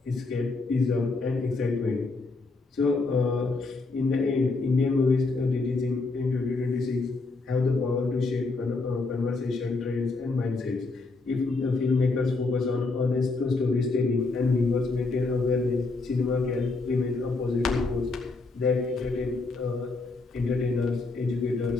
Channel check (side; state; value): right; quieter; 3.7 dB